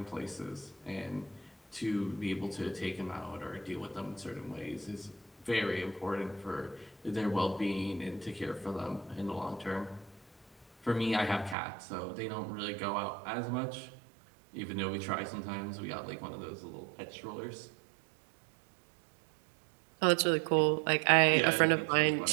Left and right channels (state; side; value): drops out; left; at 11.6 s